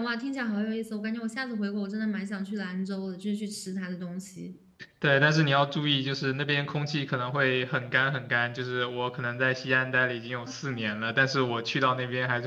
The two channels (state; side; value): identical; both; correlation 1.00